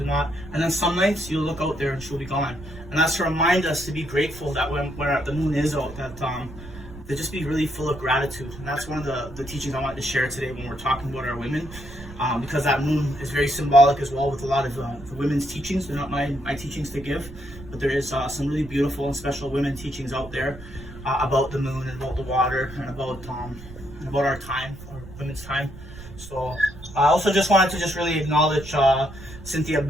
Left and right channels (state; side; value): noise; right; rumble, 16 dB below the sound